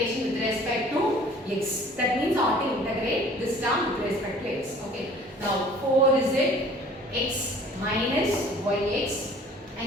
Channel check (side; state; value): both; normal; correlation 0.50